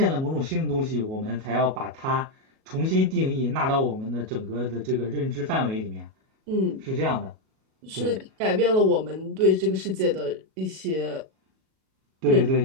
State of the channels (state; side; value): late; left; 37 ms